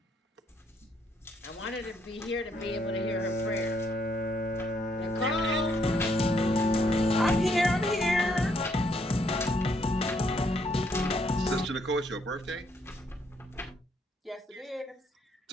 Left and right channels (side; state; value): both; normal; correlation 0.72